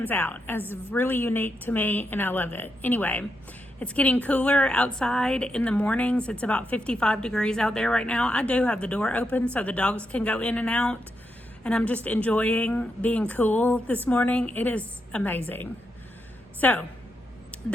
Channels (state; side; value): normal; both; correlation 0.83